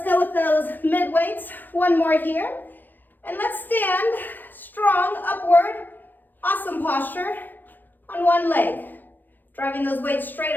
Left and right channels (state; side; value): late; right; 0.088 ms